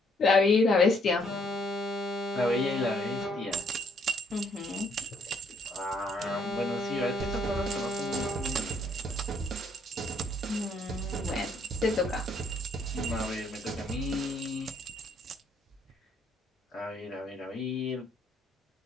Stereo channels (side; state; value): both; normal; correlation 0.68